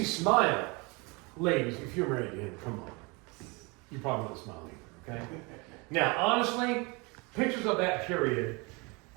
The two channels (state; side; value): quieter; left; 28.3 dB